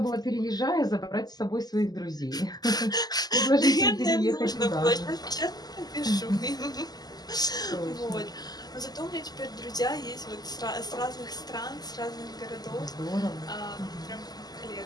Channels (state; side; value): late; right; 0.20 ms